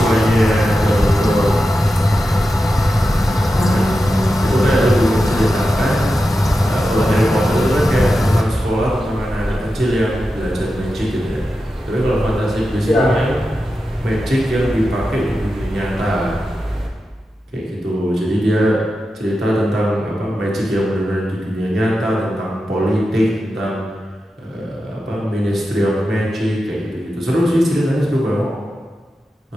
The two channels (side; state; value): both; normal; correlation 0.91